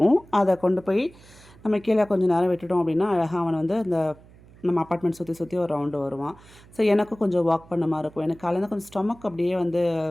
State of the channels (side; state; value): right; noise; hum, 24 dB below the sound